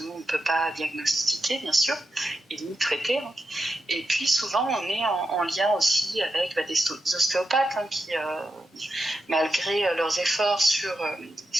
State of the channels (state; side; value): normal; both; correlation 0.87